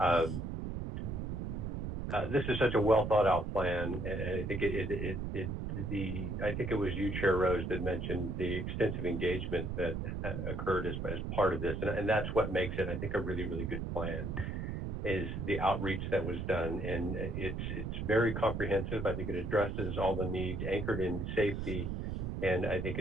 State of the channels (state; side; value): noise; right; rumble, 3 dB below the sound